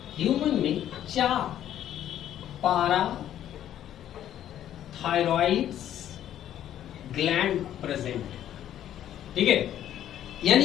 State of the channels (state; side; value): quieter; right; 11.3 dB